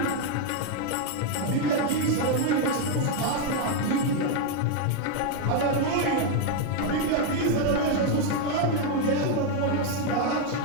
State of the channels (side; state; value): both; different; correlation 0.01